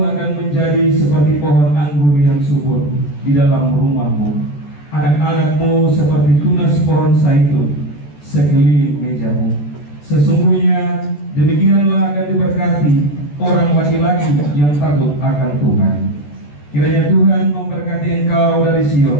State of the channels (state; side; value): late; right; 14 ms